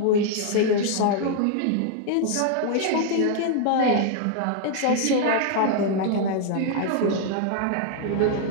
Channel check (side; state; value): both; different; correlation 0.00